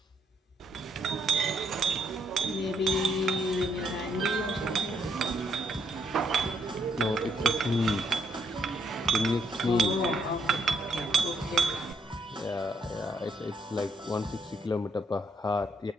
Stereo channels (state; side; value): normal; both; correlation 0.73